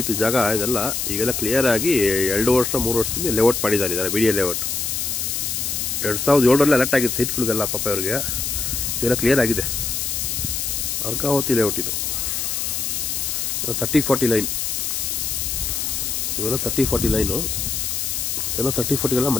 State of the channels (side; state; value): left; noise; hiss, 1 dB below the sound